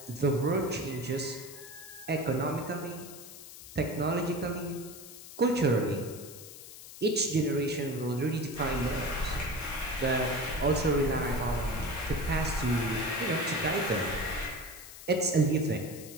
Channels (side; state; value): left; noise; hiss, 15 dB below the sound